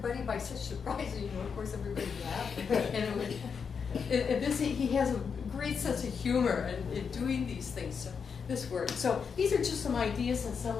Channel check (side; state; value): right; quieter; 6.2 dB